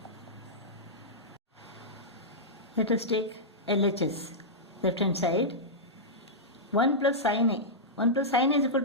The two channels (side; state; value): both; normal; correlation -0.11